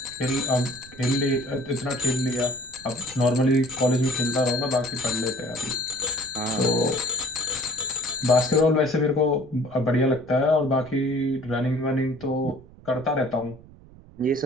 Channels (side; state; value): right; noise; rumble, 22 dB below the sound